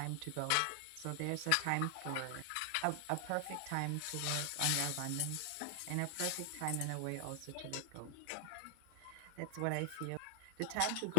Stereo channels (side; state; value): both; different; correlation -0.01